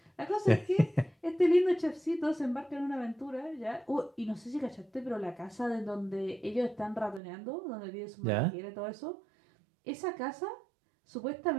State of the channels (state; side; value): drops out; left; at 7.2 s